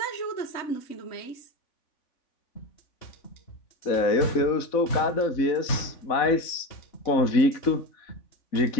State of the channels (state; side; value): late; right; 3.5 ms